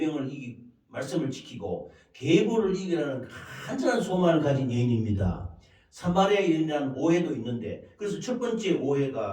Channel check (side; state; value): both; identical; correlation 1.00